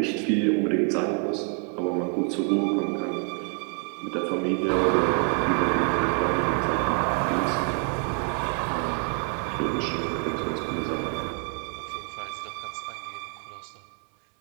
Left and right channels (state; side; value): quieter; left; 39.6 dB